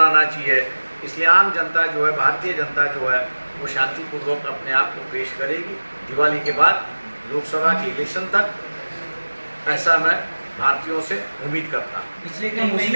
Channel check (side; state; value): both; inverted; correlation -1.00